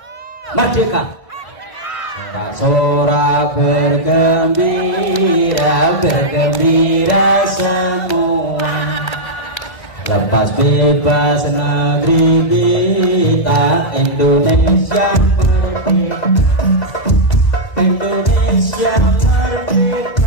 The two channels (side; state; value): right; late; 2.0 ms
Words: Merdeka. Sorak bergembira, bergembira semua. Lepas bebas negeri kita Indonesia merdeka. Indonesia